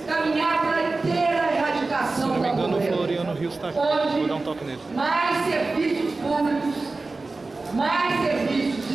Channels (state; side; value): quieter; left; 3.5 dB